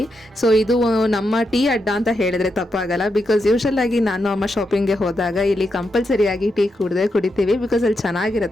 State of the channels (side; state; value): both; normal; correlation 0.84